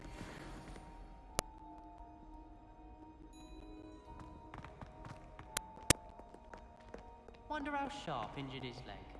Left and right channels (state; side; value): identical; both; correlation 1.00